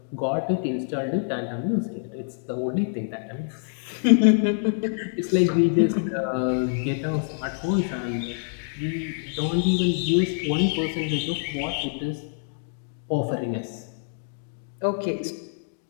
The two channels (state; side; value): silent; right; digital silence